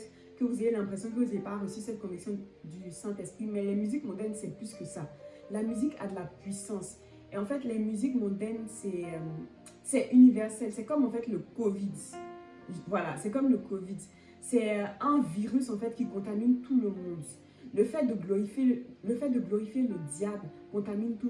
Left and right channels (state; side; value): identical; both; correlation 1.00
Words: que vous ayez l'impression que vous n'avez pas reçu cette conviction du Saint-Esprit, mais les musiques mondaines, c'est plus que ça. La musique a de la puissance. Et en fait, les musiques mondaines, c'est universel. C'est comme en fait le Covid. Voilà, c'est comme le Covid. C'est un virus en fait qui contamine tout le monde. Le fait de glorifier le diable contamine tout